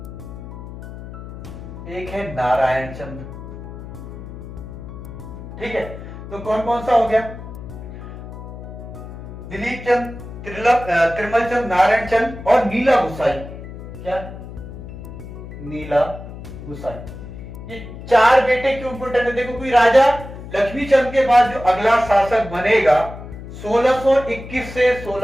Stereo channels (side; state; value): left; noise; hum, 12 dB below the sound